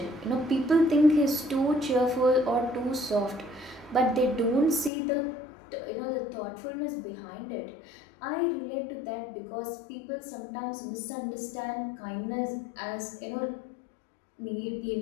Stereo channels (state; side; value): drops out; right; at 4.9 s